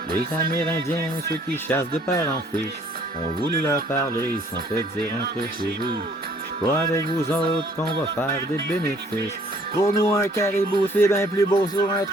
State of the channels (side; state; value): both; normal; correlation 0.59